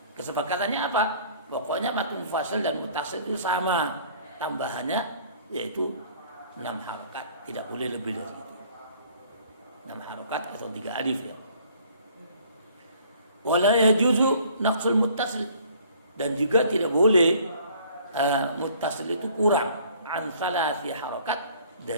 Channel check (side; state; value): both; inverted; correlation -0.55